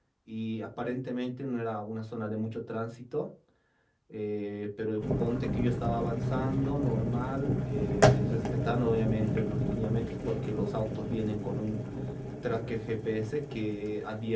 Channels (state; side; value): identical; both; correlation 1.00